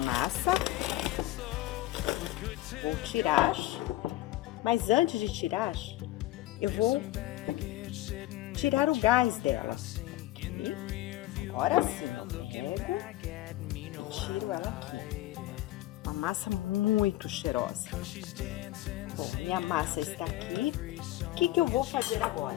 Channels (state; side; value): quieter; right; 16.5 dB